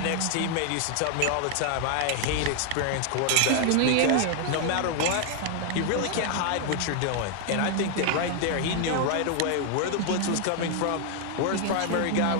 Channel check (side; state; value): both; different; correlation 0.00